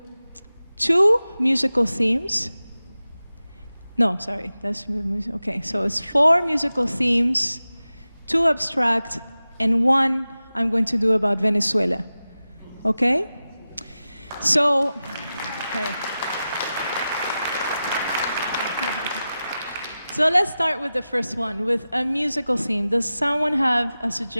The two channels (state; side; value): inverted; both; correlation -0.94